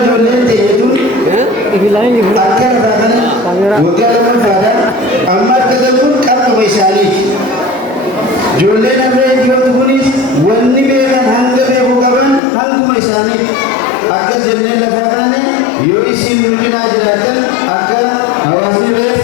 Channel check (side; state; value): right; drops out; at 12.4 s